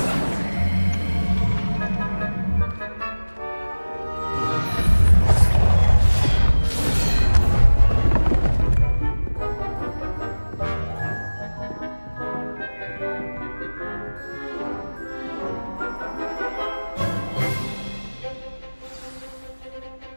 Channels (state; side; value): inverted; both; correlation -1.00